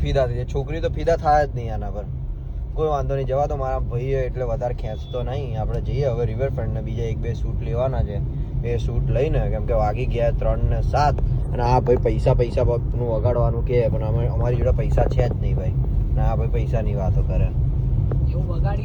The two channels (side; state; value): both; identical; correlation 1.00